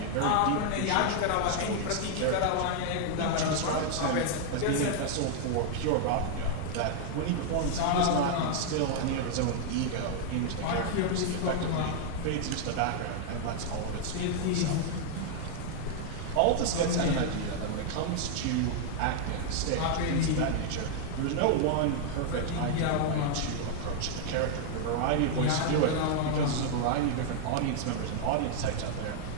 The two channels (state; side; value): different; both; correlation 0.00